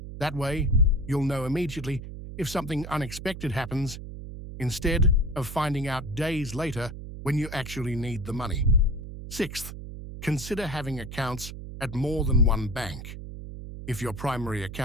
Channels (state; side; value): noise; right; hum, 10 dB below the sound